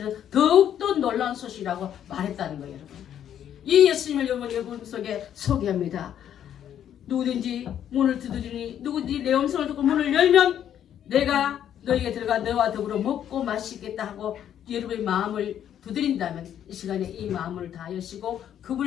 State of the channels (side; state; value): right; quieter; 10.0 dB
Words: 더욱더 놀라운 소식이라고 말했다는 거예요, 여러분. 이 예수님을 여러분 속에 소개합니다. 누구든지 문을 두드리니 누구든지 내 음성을 듣고 문을 열면 내가 너에게 들어가 너와 더불어 먹고 마시겠다 하고 여러분의 마음을 두드린다면 이 시간에 이 마음을 다 여시고